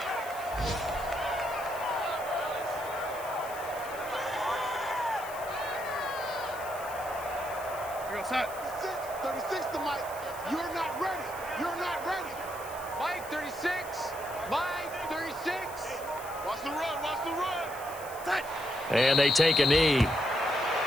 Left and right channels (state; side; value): noise; left; hiss, 16 dB below the sound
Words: Set. 36 to Mike. You're not ready. You're not ready. Mike 36. Mike 36. Watch the run. Watch the run. Set. And they take a knee.